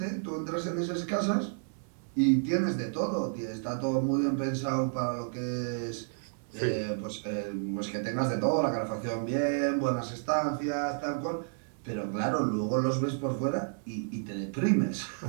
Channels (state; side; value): silent; left; 57 dB below the other